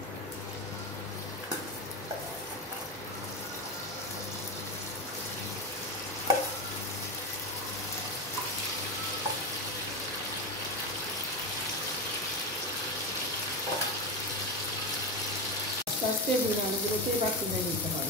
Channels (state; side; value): normal; both; correlation 0.16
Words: আস্তে আস্তে ডিম আলুগুলোকে এবার তুলে নিতে